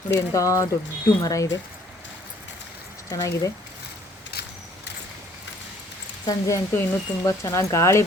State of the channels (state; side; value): normal; both; correlation 0.60